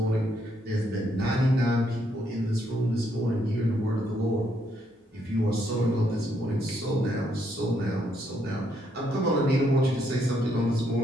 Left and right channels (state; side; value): normal; both; correlation 0.74